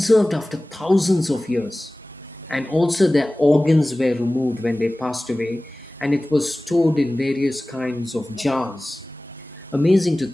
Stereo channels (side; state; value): both; normal; correlation 0.98